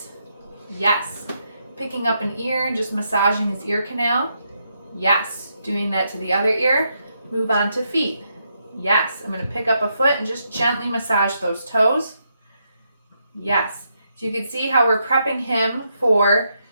Yes. Picking up an ear and just massaging his ear canal. Yes. Doing that to the other ear. Move on to feet. Yes. I'm going to pick up a foot and just gently massage those toes. Yes. So you can see how we're prepping him for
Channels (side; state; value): both; inverted; correlation -0.80